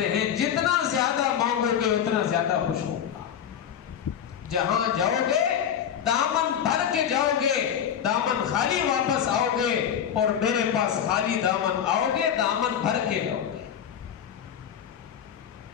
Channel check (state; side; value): quieter; right; 8.9 dB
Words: ہیں جتنا زیادہ مانگو گے اتنا زیادہ خوش ہوگا۔ جہاں جاؤ گے دامن بھر کے جاؤ گے، دامن خالی واپس آؤ گے، اور میرے پاس خالی دامن آؤ گے، دامن بھر کے جاؤ گے۔